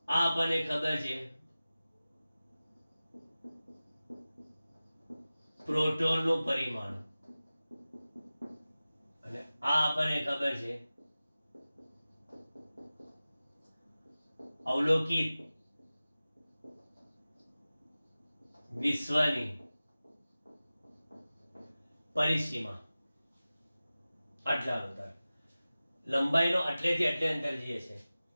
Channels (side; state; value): both; inverted; correlation -0.97